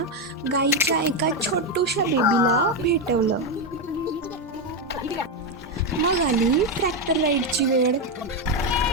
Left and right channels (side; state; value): both; normal; correlation 0.08